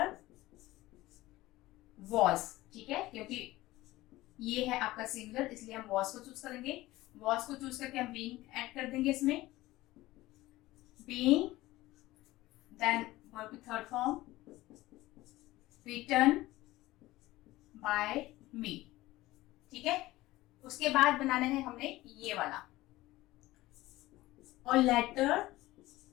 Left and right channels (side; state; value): right; quieter; 17.8 dB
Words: was, ठीक है, क्योंकि ये है आपका सिंगुलर इसलिए हम वॉज को चूज करेंगे। वॉज को चूज करके हम बीइंग ऐड कर देंगे इसमें, बीइंग, देन वर्ब की थर्ड फॉर्म, रिटन बाय मी, ठीक है। उसके बाद बनाना है हमने ये वाला, और लेटर।